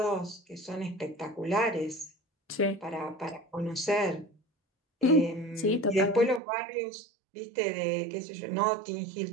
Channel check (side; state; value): left; drops out; at 6.4 s